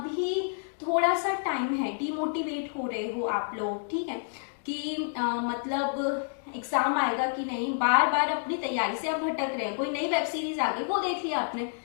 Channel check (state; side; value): silent; right; digital silence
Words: थोड़ा सा टाइम है, डिमोटिवेट हो रहे हो आप लोग। ठीक है, कि मतलब एग्जाम आएगा कि नहीं, बार बार अपनी तैयारी से आप भटक रहे हैं, कोई नई वेब सीरीज आ गई वो देख लिया आपने।